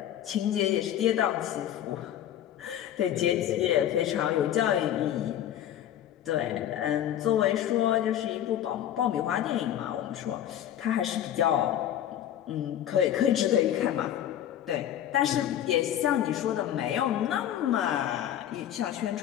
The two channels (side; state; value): right; quieter; 11.1 dB